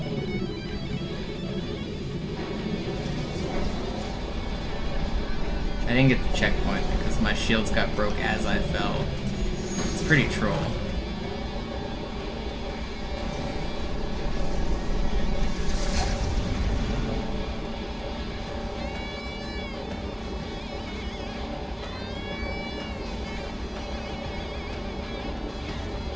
I didn't get the checkpoint because my shields got broke as I fell. It's pretty troll.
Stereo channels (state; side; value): identical; both; correlation 1.00